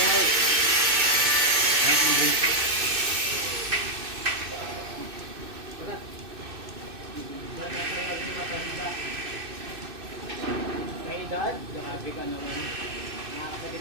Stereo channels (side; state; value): left; late; 2.6 ms